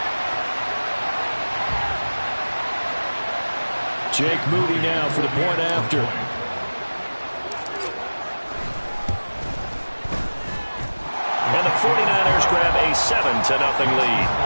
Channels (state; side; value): inverted; both; correlation -1.00